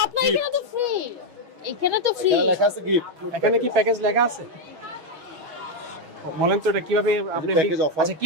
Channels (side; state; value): left; late; 6.3 ms